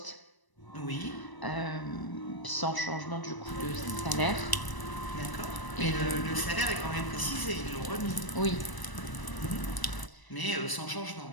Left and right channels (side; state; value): right; late; 1.0 ms